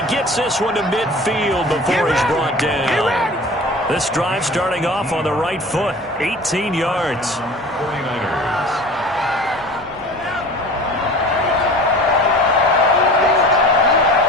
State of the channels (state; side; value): normal; both; correlation 0.40